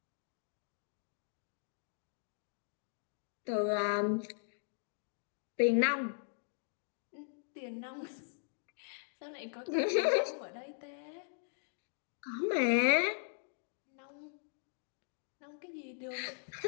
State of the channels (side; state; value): right; silent; digital silence